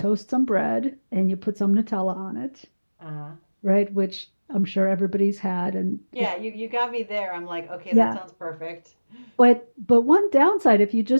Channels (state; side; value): inverted; both; correlation -1.00